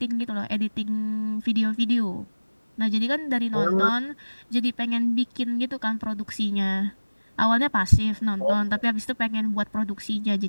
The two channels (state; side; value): inverted; both; correlation -1.00